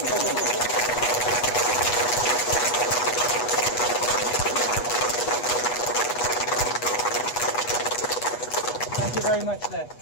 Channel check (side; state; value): right; late; 8.2 ms